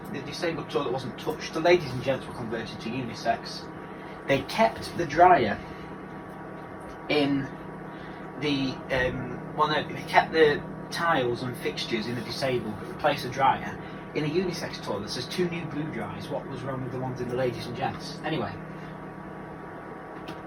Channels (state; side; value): identical; both; correlation 1.00